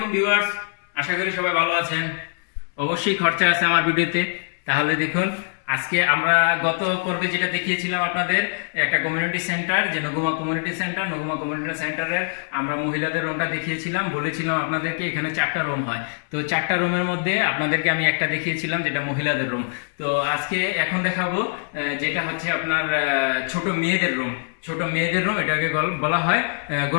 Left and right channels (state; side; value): silent; right; 62 dB below the other